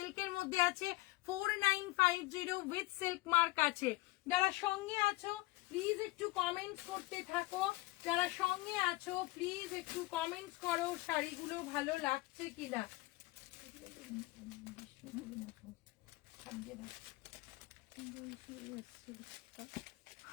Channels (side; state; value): right; quieter; 20.8 dB